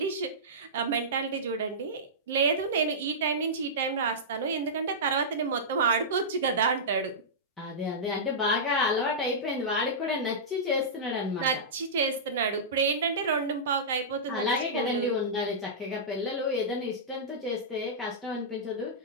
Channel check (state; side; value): normal; both; correlation -0.15